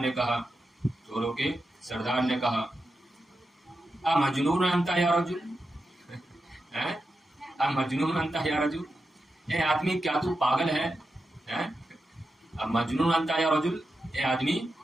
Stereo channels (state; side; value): normal; both; correlation 0.89